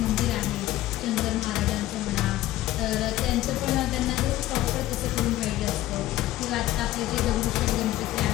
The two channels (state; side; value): quieter; right; 15.1 dB